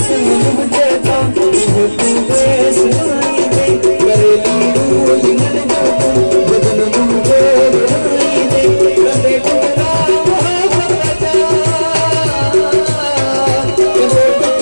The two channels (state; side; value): inverted; both; correlation -1.00